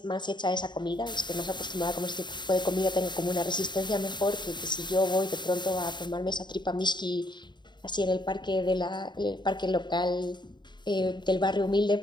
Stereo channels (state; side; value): late; right; 0.22 ms